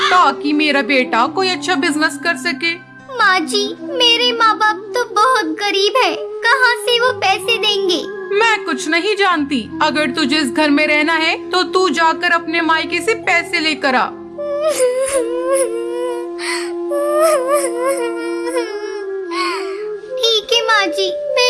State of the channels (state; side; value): identical; both; correlation 1.00